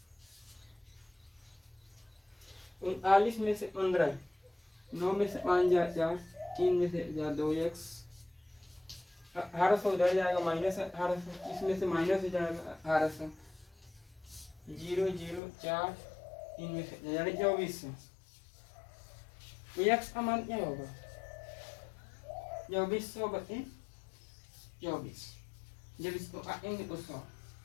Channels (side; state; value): right; drops out; at 15.4 s